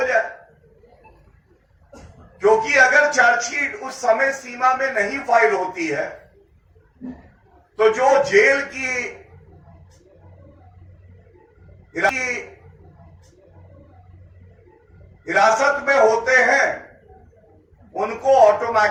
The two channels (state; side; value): identical; both; correlation 1.00